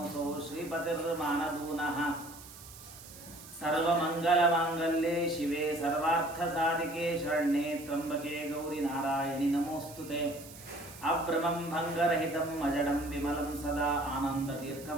श्रीपतिर्मानदूनः सर्वमङ्गलमाङ्गल्ये शिवे सर्वार्थसाधिके शरण्ये त्र्यम्बके गौरि नारायणि नमोऽस्तुते। अभ्रमं भङ्गरहितं अजडं विमलं सदा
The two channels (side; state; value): right; noise; hiss, 17 dB below the sound